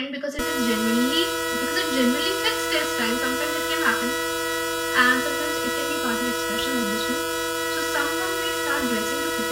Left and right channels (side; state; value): both; identical; correlation 1.00